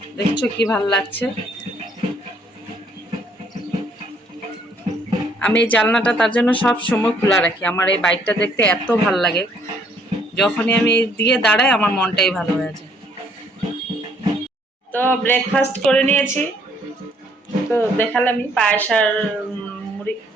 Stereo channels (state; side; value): normal; both; correlation 0.65